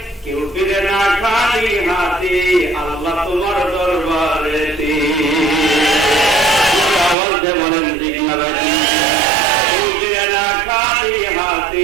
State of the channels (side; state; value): left; drops out; at 7.2 s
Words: কেউ ফিরে না খালি হাতে আল্লাহ তোমার দরবারেতে। আওয়াজে বলেন ঠিক না ভাই? কেউ ফিরে না খালি